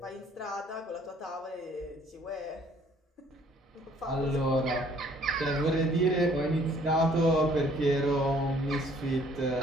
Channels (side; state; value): both; normal; correlation 0.60